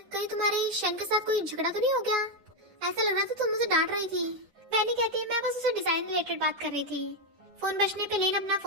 कहीं तुम्हारे शन के साथ कोई झगड़ा तो नहीं हो गया? ऐसा लग रहा था तुम मुझे डांट रही थी। वैनी कहती है मैं बस उसे डिजाइन रिलेटेड बात कर रही थी। फोन बजने पे लिन अपना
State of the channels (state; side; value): late; left; 10 ms